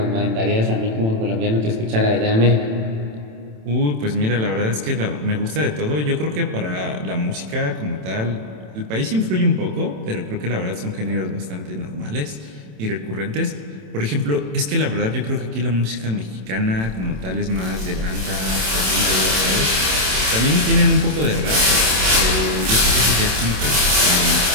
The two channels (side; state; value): left; late; 27 ms